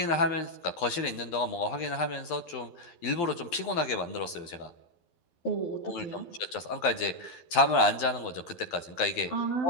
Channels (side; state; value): right; late; 12 ms